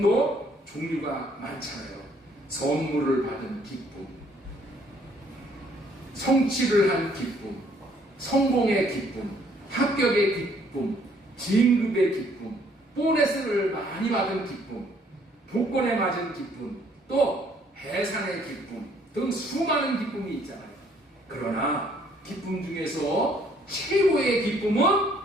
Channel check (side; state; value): both; normal; correlation 0.64